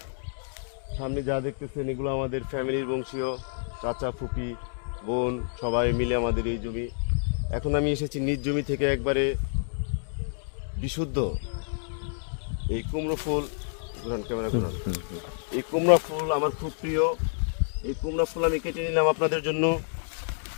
সামনে যা দেখতেছেন এগুলো আমাদের ফ্যামিলির বংশীয় চাচা ফুপি বোন সবাই মিলে আমাদের এই জমি। এখন আমি এসেছি নিজ জমি থেকে একবারে বিশুদ্ধ এই কুমড়ো ফুল ক্যামেরা ঘোরান। এই কুমড়া ফুল আমার খুব প্রিয়। এই কুমড়া ফুল আমি কেটে নিলাম আপনাদের জন্য।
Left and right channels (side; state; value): right; silent; digital silence